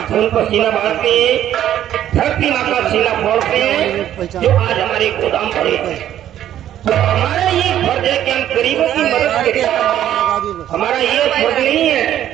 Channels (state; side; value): quieter; left; 11.5 dB